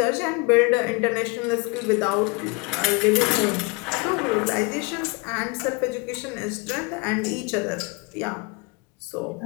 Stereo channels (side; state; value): right; quieter; 27.7 dB